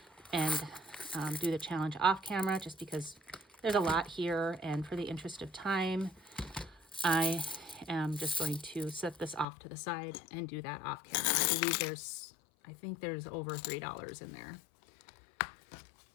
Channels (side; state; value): right; drops out; at 9.5 s